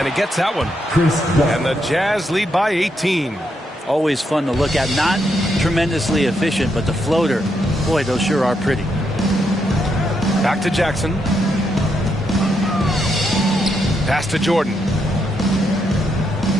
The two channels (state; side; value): normal; both; correlation 0.80